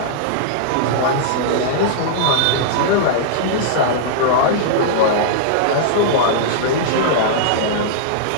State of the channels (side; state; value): both; different; correlation -0.02